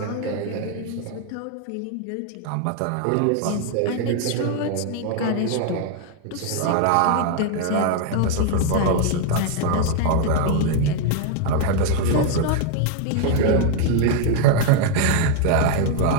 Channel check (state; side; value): different; both; correlation 0.00